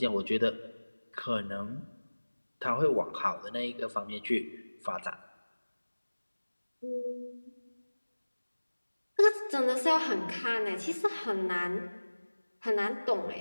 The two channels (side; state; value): both; inverted; correlation -1.00